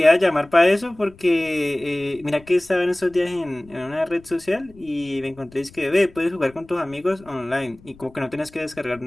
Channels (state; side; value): noise; left; rumble, 24 dB below the sound